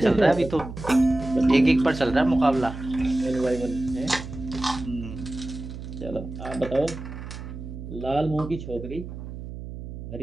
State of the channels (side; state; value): right; noise; hum, 10 dB below the sound